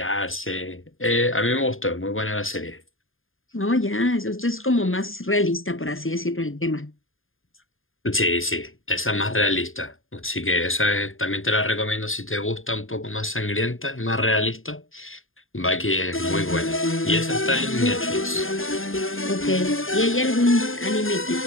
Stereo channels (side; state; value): right; late; 0.59 ms